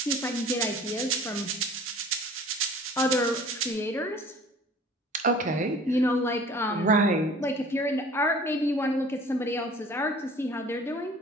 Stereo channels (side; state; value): both; normal; correlation 0.47